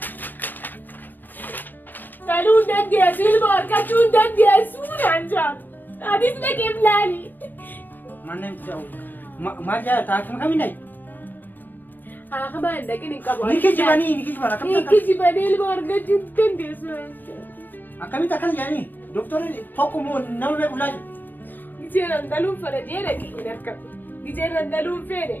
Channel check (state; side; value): late; right; 0.088 ms